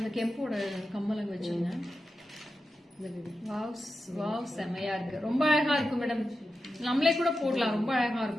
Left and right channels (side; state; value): both; normal; correlation 0.90